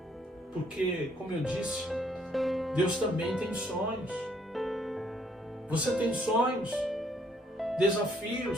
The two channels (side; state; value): both; normal; correlation 0.66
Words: porque, como eu disse, Deus também tem sonhos. Você tem sonhos, desafios,